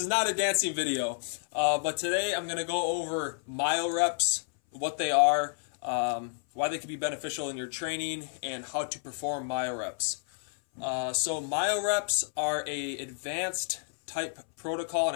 is not a dancing video, but today I'm going to go over Myo-Reps, what they are, why they can be beneficial in your training, and how to perform Myo-Reps. So Myo-Reps are a advanced type protocol,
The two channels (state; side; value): silent; right; 58 dB below the other